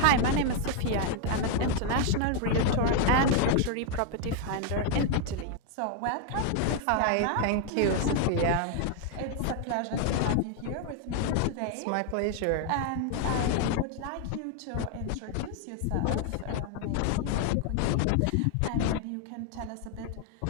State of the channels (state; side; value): different; both; correlation 0.00